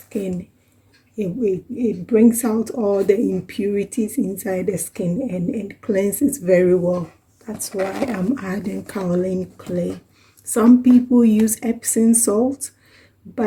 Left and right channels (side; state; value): both; identical; correlation 1.00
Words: It brings out all the impurities inside the skin and cleanses very well. That's why I'm adding kaolin clay. Some people use Epsom salt,